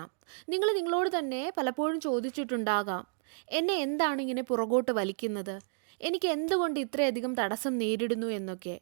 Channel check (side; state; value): left; silent; digital silence